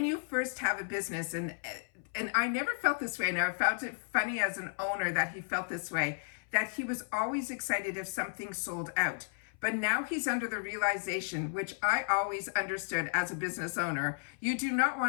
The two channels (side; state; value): right; silent; 55 dB below the other